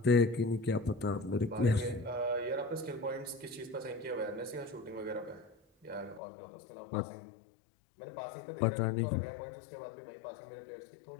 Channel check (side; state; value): right; drops out; at 6.2 s